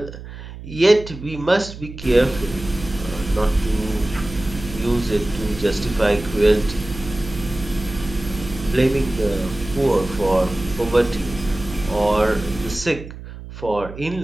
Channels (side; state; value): right; noise; hum, 13 dB below the sound